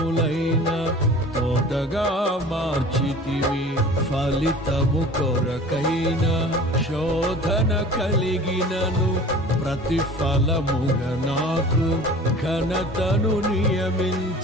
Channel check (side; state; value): both; normal; correlation 0.43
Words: తోటగా మార్చితివి. ఫలితము కొరకైన శోధన కలిగినను, ప్రతిఫలముగా నాకు ఘనతను